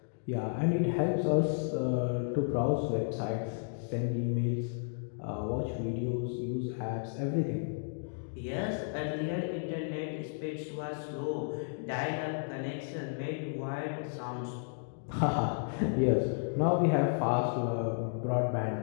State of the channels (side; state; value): right; silent; digital silence